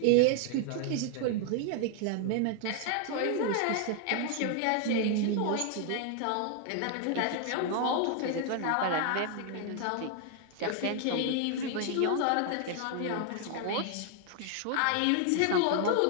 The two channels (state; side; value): different; both; correlation 0.00